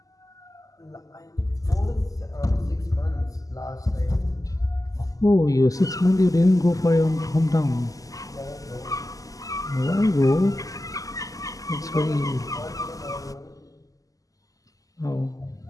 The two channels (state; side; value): late; right; 0.17 ms